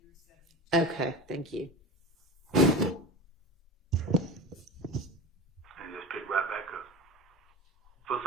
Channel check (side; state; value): both; normal; correlation 0.30